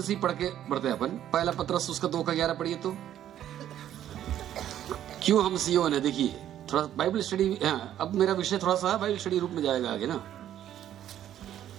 ही पढ़ के बढ़ते हैं अपन। पहला पत्रस उसका 2:11 पढ़िए तो। क्यों हम सियोन है? देखिए थोड़ा बाइबल स्टडी। अब मेरा विषय थोड़ा सा बाइबल स्टडी रूप में जाएगा आगे ना।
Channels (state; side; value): quieter; left; 11.3 dB